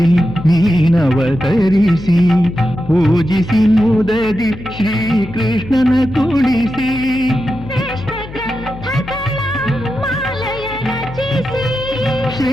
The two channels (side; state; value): left; noise; hum, 14 dB below the sound